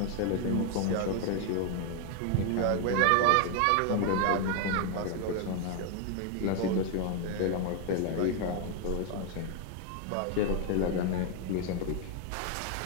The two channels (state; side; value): different; both; correlation 0.00